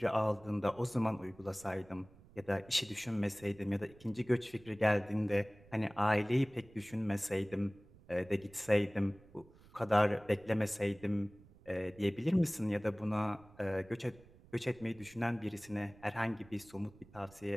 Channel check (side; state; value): right; noise; rumble, 24 dB below the sound